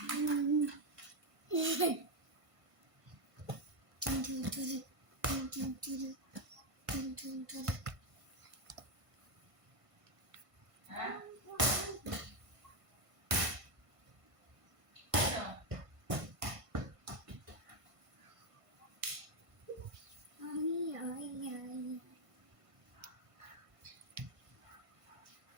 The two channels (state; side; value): late; left; 1.5 ms